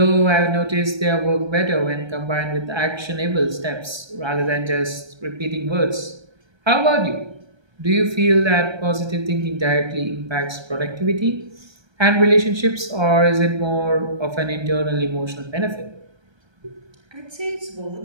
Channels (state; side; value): late; left; 1.3 ms